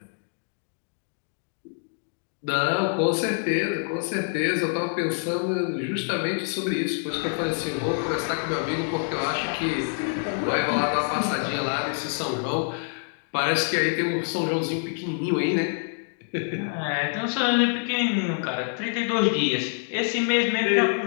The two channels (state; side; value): silent; right; digital silence